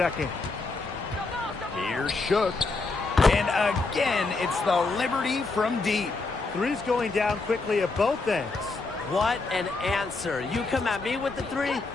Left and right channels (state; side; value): quieter; right; 3.7 dB